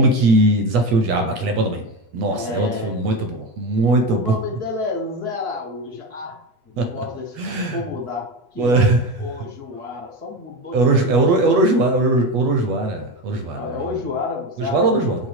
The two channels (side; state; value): left; late; 8.3 ms